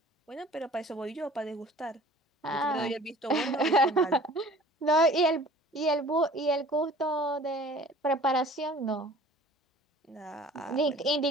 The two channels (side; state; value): both; normal; correlation 0.48